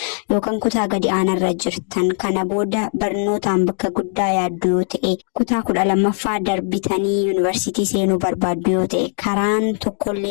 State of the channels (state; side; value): silent; right; 64 dB below the other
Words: yookaan kutaa gadi aanarra jirtan kana booda barnootaan bakka guddaa yaaddu yoo ta'e kutaa 12ffaa bitanii yuunivarsiitii seenuu barbaaddu yoo ta'e karaan